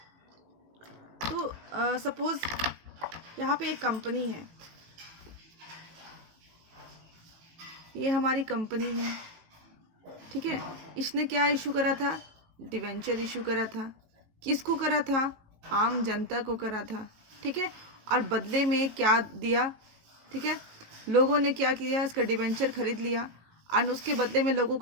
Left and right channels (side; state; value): left; late; 18 ms